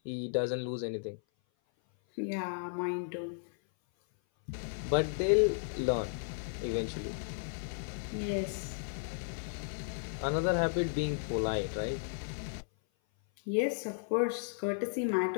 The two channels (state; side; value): silent; right; 55 dB below the other